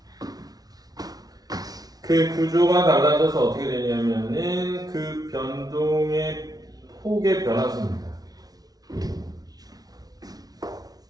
그 구조가 달라져서 어떻게 되냐면은 그 변동의 폭의 변화수입니다.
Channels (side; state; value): left; late; 0.19 ms